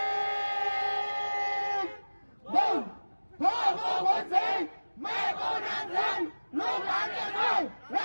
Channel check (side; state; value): both; inverted; correlation -1.00